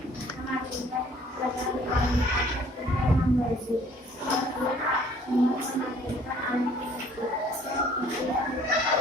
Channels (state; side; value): normal; both; correlation 0.57